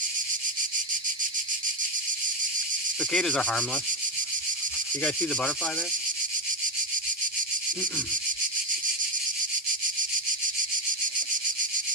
Cicadas are harmless. You guys see the butterfly there?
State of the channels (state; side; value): normal; both; correlation 0.10